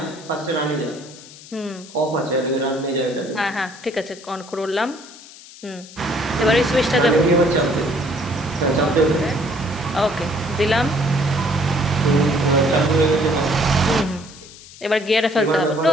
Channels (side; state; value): left; noise; hiss, 19 dB below the sound